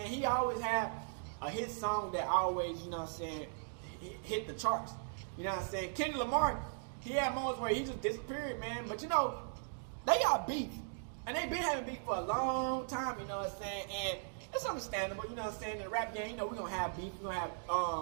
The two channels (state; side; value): silent; left; digital silence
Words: He always had a hit song that always, you know what I'm saying, hit the charts. You know what I'm saying? Kendrick Lamar, he had moments where he just disappeared, man. But you know, they got beef, and they been having beef for a long time. You know what I'm saying? And it's understandable. You know what I'm saying? In the rap game, you know, we're gonna have beef. We're gonna